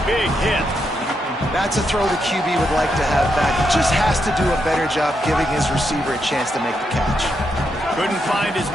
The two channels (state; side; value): normal; both; correlation 0.81